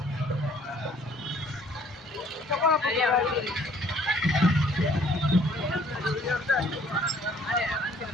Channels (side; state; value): both; normal; correlation 0.59